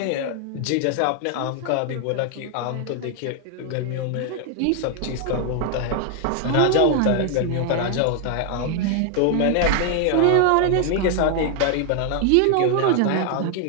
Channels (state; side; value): different; both; correlation 0.00